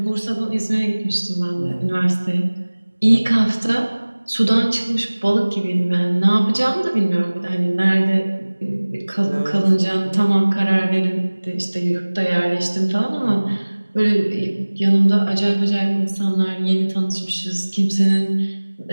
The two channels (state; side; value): inverted; both; correlation -1.00